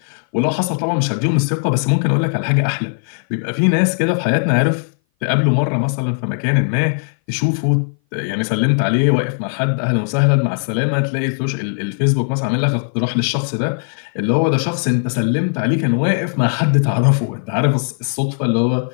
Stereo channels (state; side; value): silent; right; 59 dB below the other